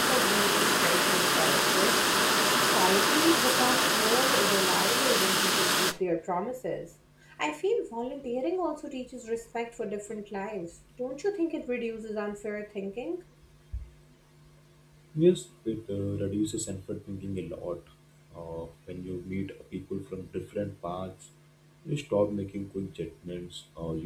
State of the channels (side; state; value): both; identical; correlation 1.00